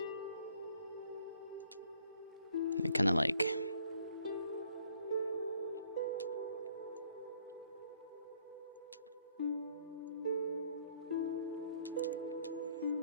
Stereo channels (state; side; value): inverted; both; correlation -0.64